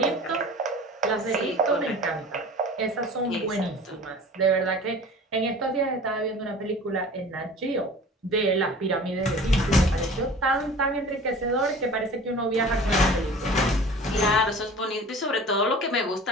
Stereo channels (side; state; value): both; normal; correlation 0.42